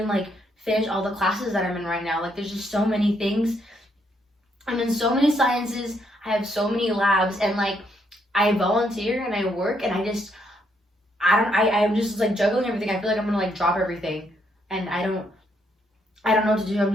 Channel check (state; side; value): normal; both; correlation 0.74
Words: like finish all the classes that I'm in right now. Like there's just so many things. I'm in so many sciences. I have so many labs and like I volunteer and I work and I'm just like juggling everything. I feel like I'm gonna like drop everything and I don't know what to do. I'm